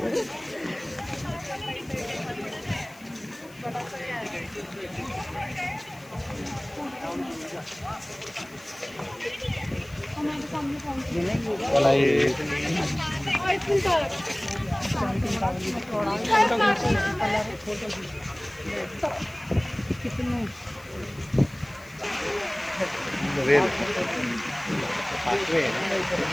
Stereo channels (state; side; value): noise; left; hiss, 24 dB below the sound